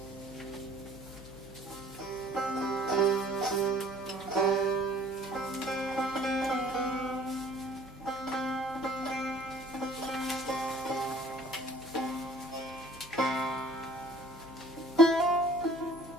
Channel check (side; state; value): both; normal; correlation 0.53